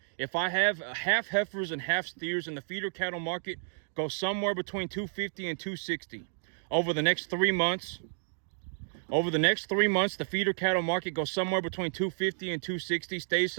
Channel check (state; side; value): silent; left; digital silence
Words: if I have half heifers and half steers in the feeder cattle market, go somewhere between 250 and 260 over the next 3 months. Over the next 3 months, the feeder cattle market goes somewhere between 250 and 260, stays